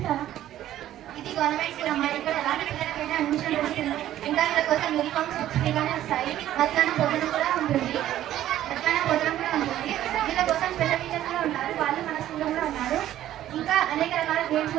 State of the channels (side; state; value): left; quieter; 12.7 dB